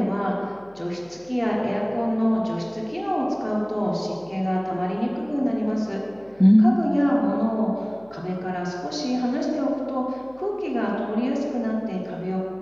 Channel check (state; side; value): noise; left; hum, 28 dB below the sound